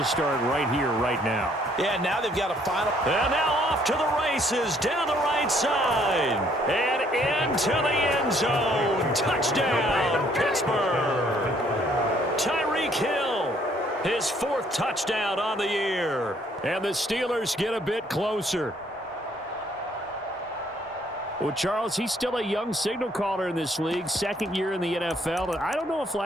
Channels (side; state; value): both; normal; correlation 0.65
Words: start right here, right now. Yeah, now they've got a final. And now off to the races, down the right side, and into the end zone. Touchdown, Pittsburgh. Tyreek Hill, his 4th touchdown on the year. And the Steelers get a bit closer. Well, Charles, he's still a young signal caller in this league, 2nd year in the NFL. And I don't know if